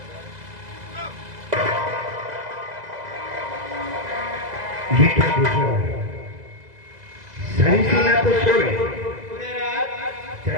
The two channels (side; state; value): left; late; 2.0 ms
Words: ये क्या देखो, सारी सेना तो सोए।